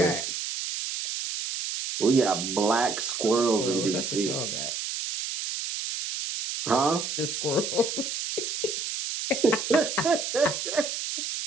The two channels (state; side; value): noise; right; hiss, 4 dB below the sound